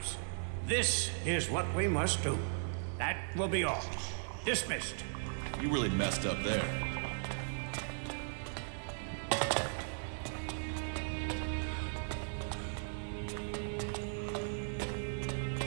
this is what we must do. That will be all. Dismissed. You really messed up there.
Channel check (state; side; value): silent; left; digital silence